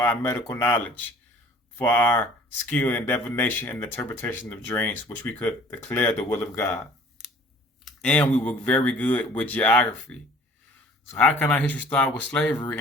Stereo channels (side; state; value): both; normal; correlation 0.51